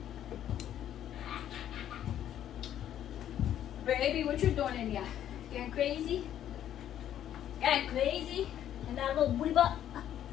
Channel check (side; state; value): right; quieter; 10.9 dB